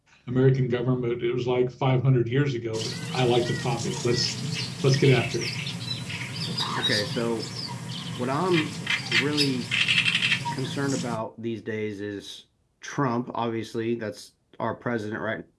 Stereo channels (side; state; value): both; identical; correlation 1.00